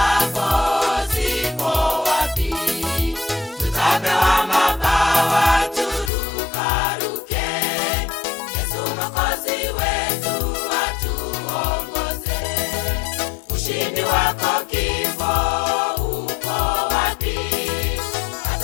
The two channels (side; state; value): right; drops out; at 6.1 s